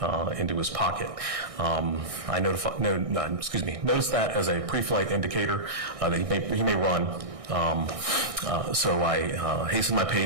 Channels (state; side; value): late; left; 1.6 ms